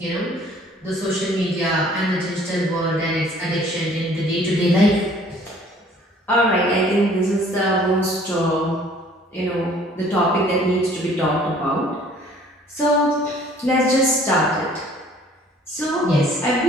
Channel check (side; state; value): both; normal; correlation 0.55